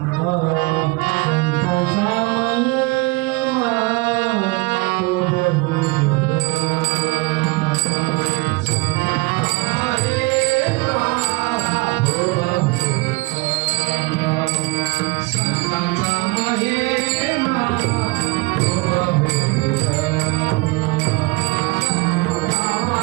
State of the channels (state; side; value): quieter; left; 25.8 dB